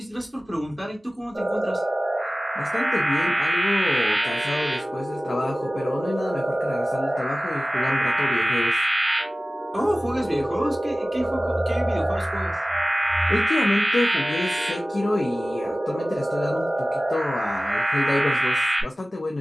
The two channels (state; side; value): normal; both; correlation 0.97